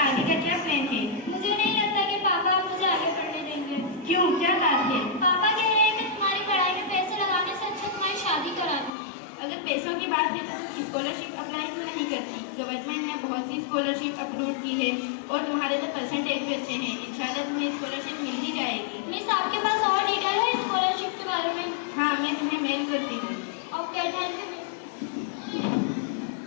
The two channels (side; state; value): right; drops out; at 8.9 s